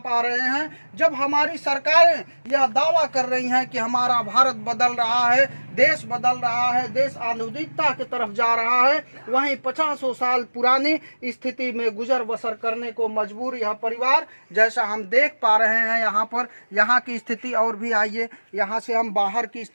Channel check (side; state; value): both; inverted; correlation -1.00